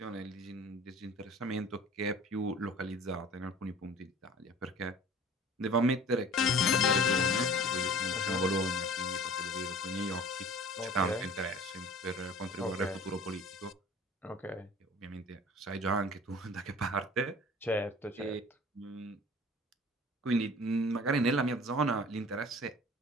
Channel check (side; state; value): both; normal; correlation 0.46